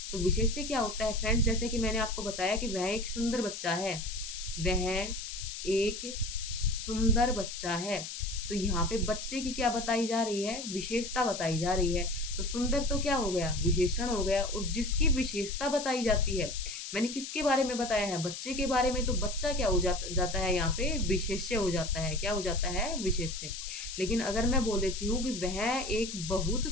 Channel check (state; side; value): noise; left; hiss, 8 dB below the sound